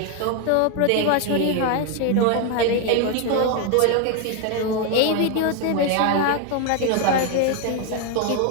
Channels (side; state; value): both; different; correlation 0.01